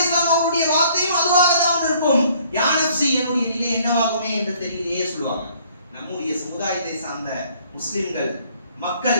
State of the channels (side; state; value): both; inverted; correlation -0.60